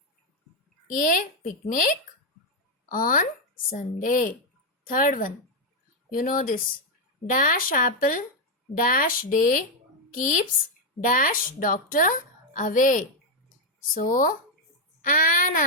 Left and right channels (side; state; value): both; normal; correlation 0.02